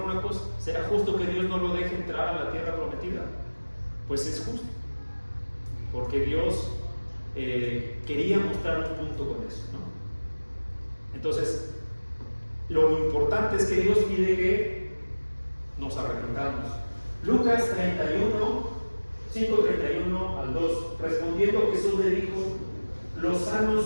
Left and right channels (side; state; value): both; inverted; correlation -1.00